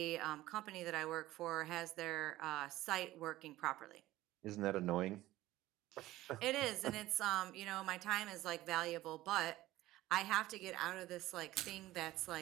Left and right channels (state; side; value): quieter; left; 16.3 dB